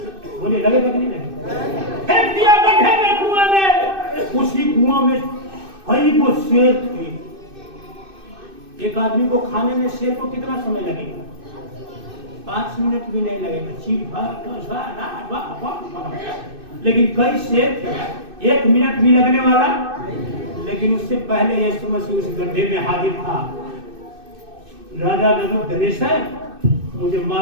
बोले लगे नहीं लगे? फेंक दिया गड्ढे में, कुआं में। उसी कुआं में कई वो शेर थे। एक आदमी को खाने में शेर को कितना समय लगेगा? 5 मिनट भी नहीं लगेगा। लेकिन कई शेर थे, 1 मिनट भी लगने वाला। लेकिन उससे पहले यीशु मसीह उस गड्ढे में हाजिर था। राजा नबूकदनेस्सर, मुझे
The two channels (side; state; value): left; late; 2.6 ms